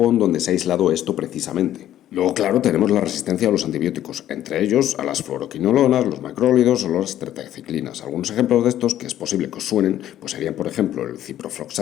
donde se ha aislado esto precisamente. Luego, claro, tenemos la resistencia a los antibióticos, entre ellos a las fluoroquinolonas, los macrólidos o las tetraciclinas. Algunos ejemplos de estos que es posible que os suenen pues serían, por ejemplo, el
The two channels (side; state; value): right; quieter; 12.1 dB